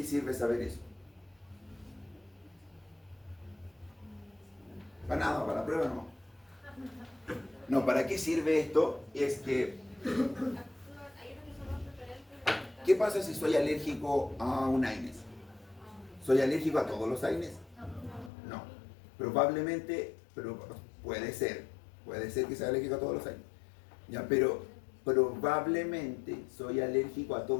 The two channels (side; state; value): right; drops out; at 18.3 s